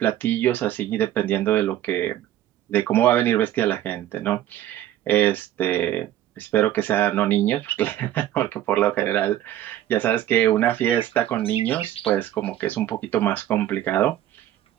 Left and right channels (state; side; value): quieter; left; 12.6 dB